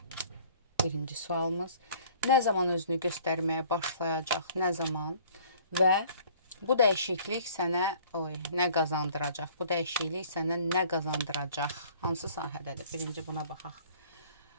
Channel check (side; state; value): both; inverted; correlation -0.53